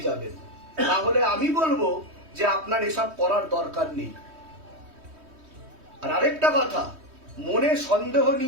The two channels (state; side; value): late; left; 3.2 ms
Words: যাবেন। তাহলে আমি বলবো যে আপনার এসব করার দরকার নেই। আর আরেকটা কথা, মনে সন্দেহ